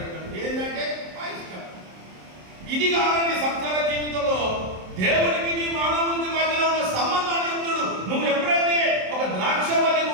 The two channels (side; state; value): left; late; 27 ms